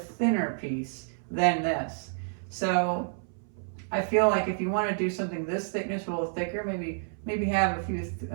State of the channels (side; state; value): left; silent; 58 dB below the other